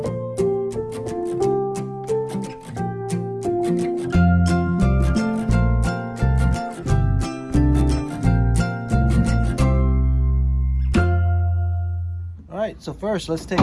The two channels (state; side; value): identical; both; correlation 1.00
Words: All right, so first let's take